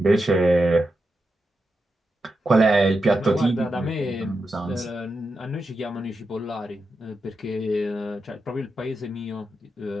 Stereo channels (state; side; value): normal; both; correlation 0.88